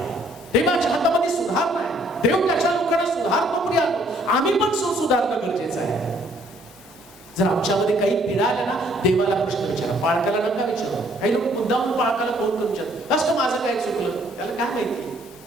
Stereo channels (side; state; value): both; normal; correlation 0.63